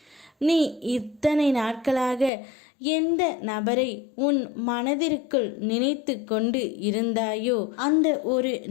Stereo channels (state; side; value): drops out; right; at 2.3 s